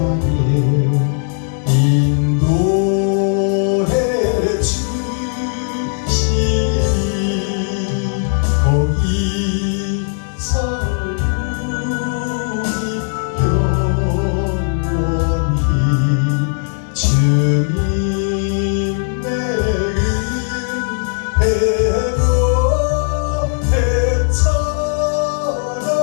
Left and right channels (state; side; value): silent; right; digital silence